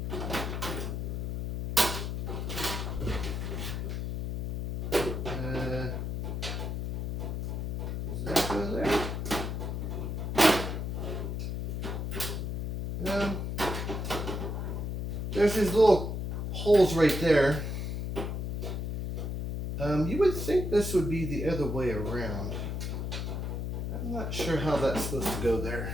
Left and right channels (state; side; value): noise; left; hum, 2 dB below the sound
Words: does that go there? There's these little holes right there. You would think this would be the other way around. I'm not sure how that's supposed to go there.